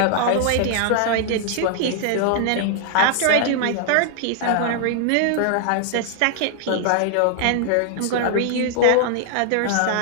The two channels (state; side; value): different; both; correlation 0.00